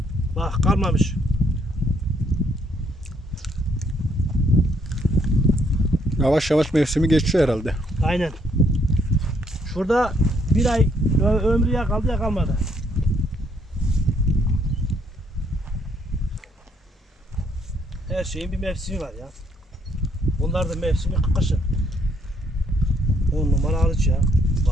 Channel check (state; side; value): normal; both; correlation 0.70